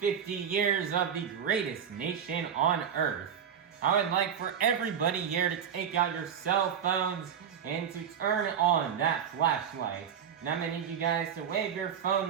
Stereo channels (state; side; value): quieter; left; 8.1 dB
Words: years of the greatest nation on earth. I would like for everybody here to take out your cell phones and to turn on that flashlight. And I'm going to need you guys to wave your